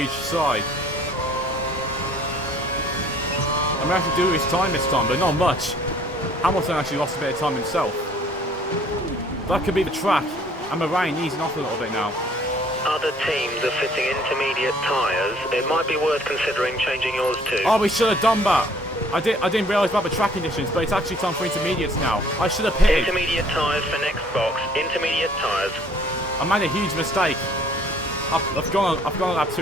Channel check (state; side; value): normal; both; correlation 0.58